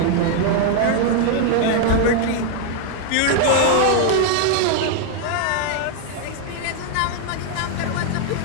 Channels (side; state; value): both; different; correlation 0.00